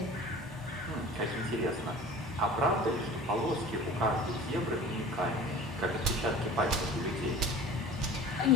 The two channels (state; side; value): normal; both; correlation 0.40